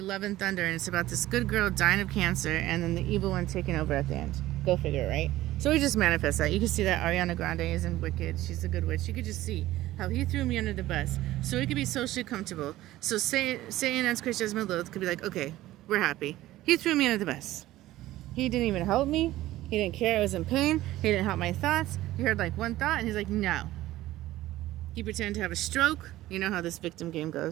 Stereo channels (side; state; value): left; quieter; 15.8 dB